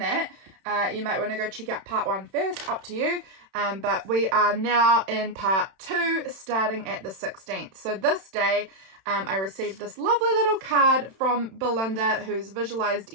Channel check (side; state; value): left; late; 31 ms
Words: you might want to go check out part 1 first, up to you. But we are now in part 2, starting at the 16th. So this day, I received this lovely little card from Belinda, who's visualized